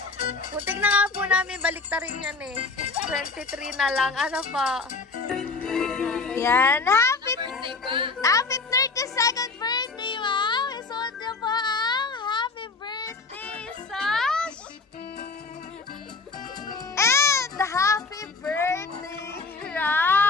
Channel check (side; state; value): right; quieter; 4.0 dB